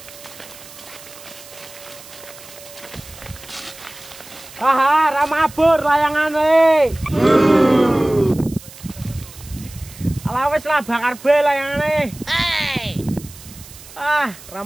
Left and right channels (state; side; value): noise; right; hiss, 18 dB below the sound